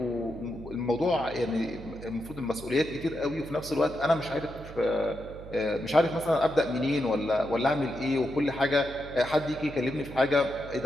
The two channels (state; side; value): noise; right; hum, 14 dB below the sound